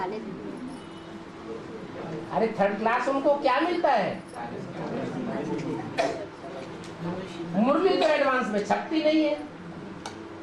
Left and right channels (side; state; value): both; identical; correlation 1.00